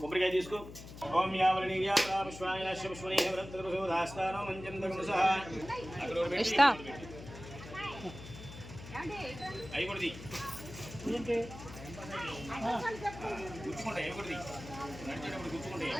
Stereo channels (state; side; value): noise; left; hum, 13 dB below the sound